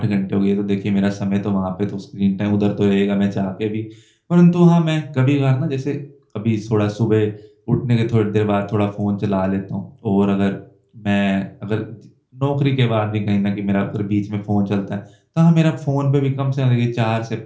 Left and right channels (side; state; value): both; identical; correlation 1.00